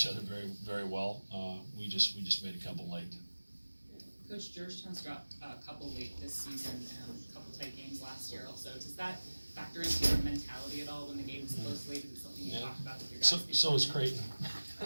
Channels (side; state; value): both; inverted; correlation -1.00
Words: other very, very well. We just made a couple late. Coach, Georgetown's got a couple late this season and a couple tight games last year also. Does that factor into your mentality at all when the game is close late? Is it something you talk about with your guys? So is Creighton.